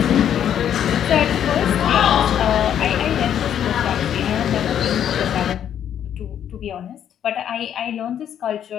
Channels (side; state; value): right; quieter; 9.6 dB